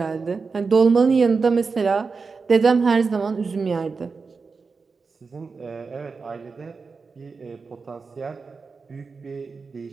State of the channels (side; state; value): left; quieter; 4.7 dB